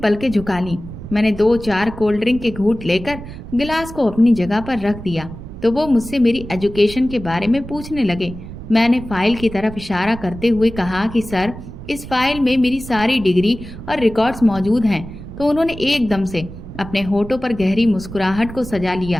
झुका ली। मैंने 2-4 कोल्ड ड्रिंक के घूंट लेकर गिलास को अपनी जगह पर रख दिया तो वो मुझसे मेरी एजुकेशन के बारे में पूछने लगे। मैंने फाइल की तरफ इशारा करते हुए कहा कि सर, इस फाइल में मेरी सारी डिग्री और रिकॉर्ड्स मौजूद हैं। तो उन्होंने एकदम से अपने होठों पर गहरी मुस्कुराहट को सजा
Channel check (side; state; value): right; noise; rumble, 12 dB below the sound